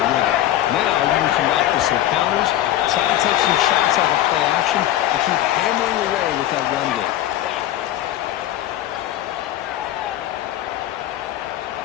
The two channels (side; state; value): right; quieter; 13.1 dB